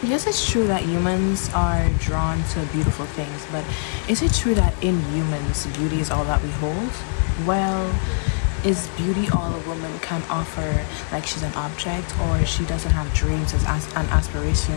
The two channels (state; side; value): silent; right; digital silence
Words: Yes, it's true that humans are drawn to beautiful things, but is it true that in humans, beauty is all that we hold? Well, is beauty all a woman can offer, like she's an object, or she doesn't have dreams and